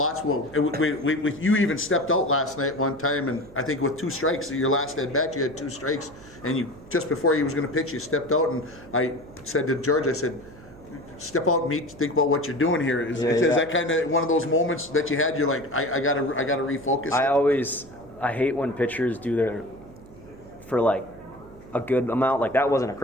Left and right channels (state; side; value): noise; right; hum, 20 dB below the sound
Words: Well, you even stepped out last night one time, and I think with 2 strikes, your last at bat, you had 2 strikes, and you just before he was going to pitch, you stepped out, and I said to George, I said, step out and think about what you're doing here. Is that kind of one of those moments that you had? You're like, I gotta refocus. I hate when pitchers do their for like a good amount. Like that wasn't a